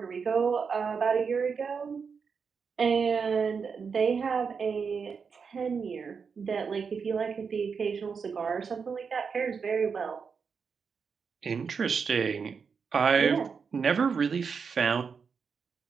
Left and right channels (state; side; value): quieter; left; 5.8 dB